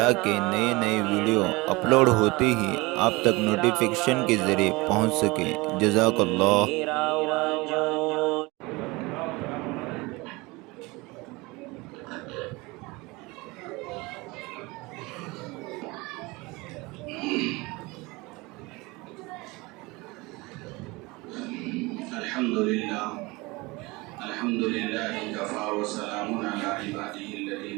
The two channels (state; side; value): quieter; left; 23.7 dB